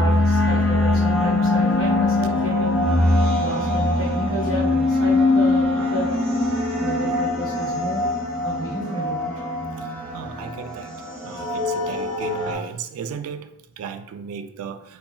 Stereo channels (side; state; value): both; normal; correlation 0.60